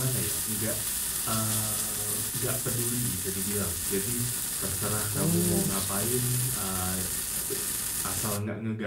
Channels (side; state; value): both; identical; correlation 1.00